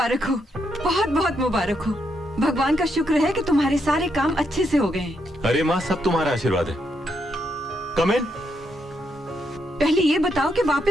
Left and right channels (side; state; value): both; normal; correlation 0.79